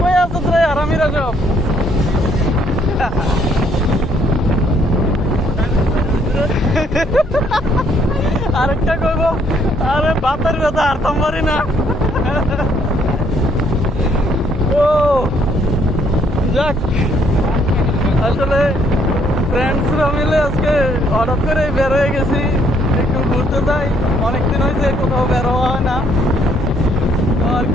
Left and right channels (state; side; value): normal; both; correlation 0.67